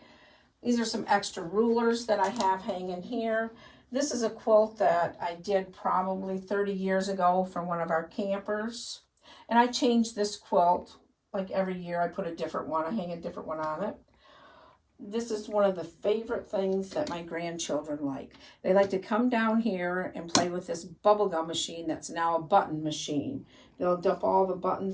These are some extra rulers that I have hanging here. This is a quilt that I did probably 30 years ago for one of our campers. And I change this quilt like every year. I put a different one, I hang a different one on it. This is one of the favorite things that my grandchildren like. They like to come down here and play with this bubblegum machine that's now a button machine. They'll dump all the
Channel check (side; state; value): both; identical; correlation 1.00